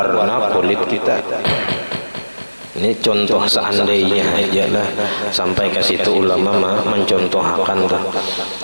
kulit kita. Ini contoh seandainya aja lah, sampai ke situ ulama mencontohkan tuh.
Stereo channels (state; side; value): inverted; both; correlation -1.00